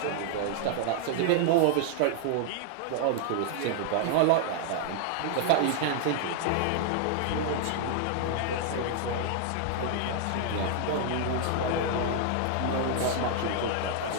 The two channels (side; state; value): both; different; correlation 0.00